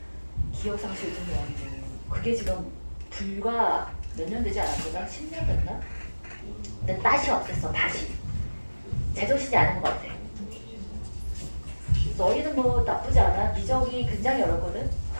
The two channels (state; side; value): inverted; both; correlation -1.00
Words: 기억상실 좀 아니고 그게 지금 불과 몇 년 되지 않았구나? 10년 됐나? 근데 다시 없앴어. 다시. 제정신이 아닌 것 같아. 너희는 뭐 나쁘지 않아. 미적이 굉장히 어렵거든.